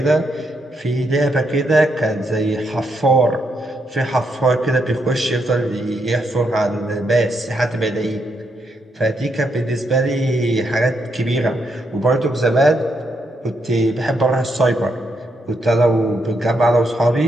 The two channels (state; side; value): normal; both; correlation 0.79